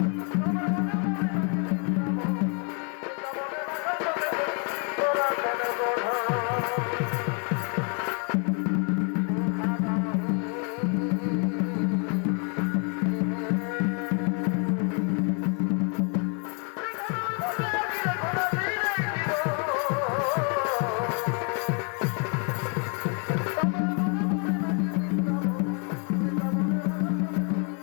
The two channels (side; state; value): right; quieter; 36.0 dB